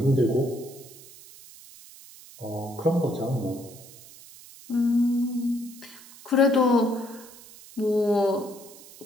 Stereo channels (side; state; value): right; noise; hiss, 20 dB below the sound